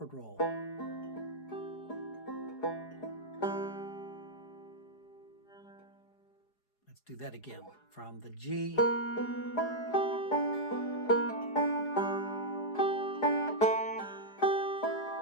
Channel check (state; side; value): late; right; 4.8 ms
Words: roll. Let's do that again. From the G.